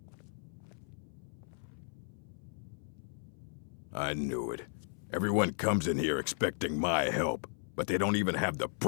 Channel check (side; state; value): right; silent; 54 dB below the other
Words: I knew it. Everyone comes in here expecting my help, but they don't even have the